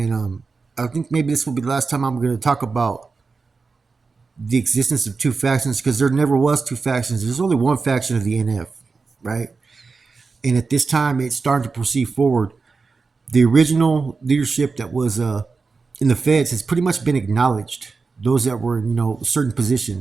I think maybe this will be the last time I'm going to talk about the existence of two factions, because there never was two factions. There's only one faction of the NF, right? And at this time, it's starting to proceed forward. The original leadership that was in the feds has pretty much been acknowledged. Those that were, certain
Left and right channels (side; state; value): left; quieter; 4.5 dB